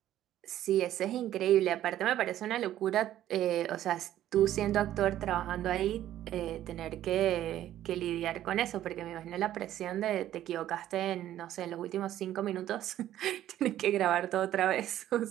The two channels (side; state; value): left; quieter; 12.6 dB